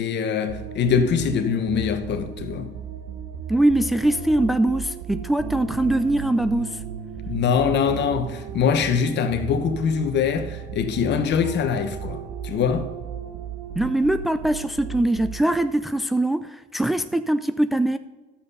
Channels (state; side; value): normal; both; correlation 0.63